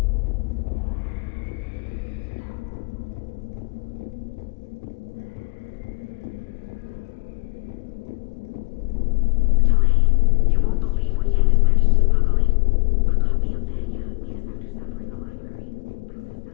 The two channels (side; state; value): right; quieter; 32.3 dB